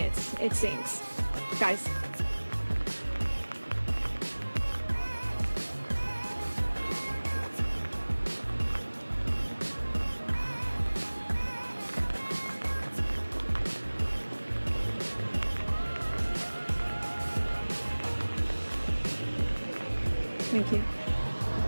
it seems. Guys. Thank you.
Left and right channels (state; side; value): inverted; both; correlation -1.00